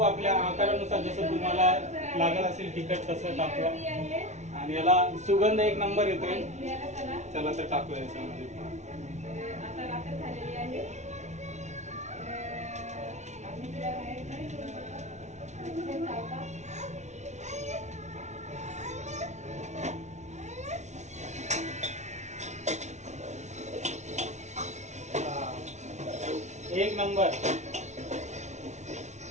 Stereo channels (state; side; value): late; left; 0.33 ms